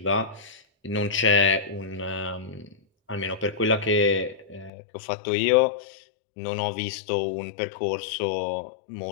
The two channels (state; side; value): drops out; right; at 4.7 s